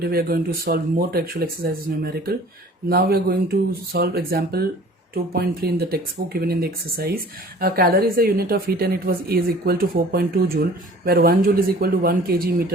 we are going to solve more textual exercises numerical. Now we are going to solve example 2.3 in the textbook given in the exercise. A calorie is a unit of heat and it was is equal to 4.2 joule, where 1 joule is equal to 1 kg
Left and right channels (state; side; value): normal; both; correlation 0.48